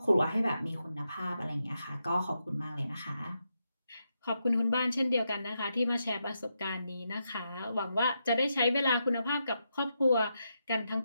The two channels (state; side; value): inverted; both; correlation -0.84